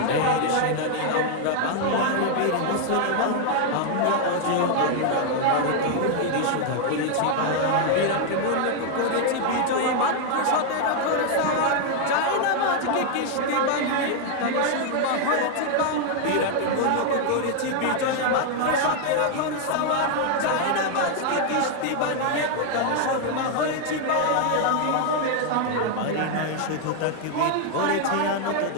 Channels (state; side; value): different; both; correlation 0.00